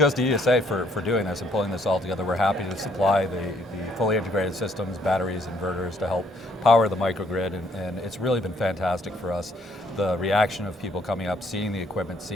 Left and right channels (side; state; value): both; normal; correlation 0.67